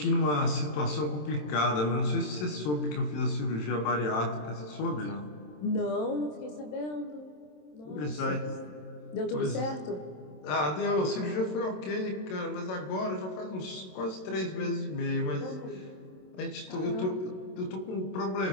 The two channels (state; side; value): late; right; 27 ms